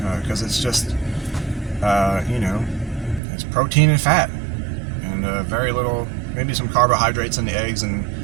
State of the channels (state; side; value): drops out; left; at 3.2 s